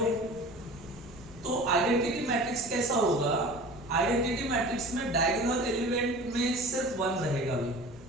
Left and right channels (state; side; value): noise; right; rumble, 22 dB below the sound